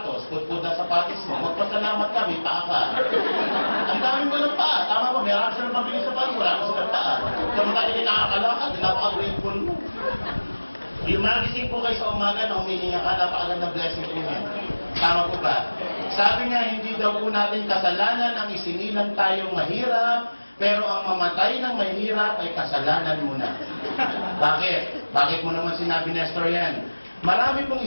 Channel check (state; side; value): inverted; both; correlation -1.00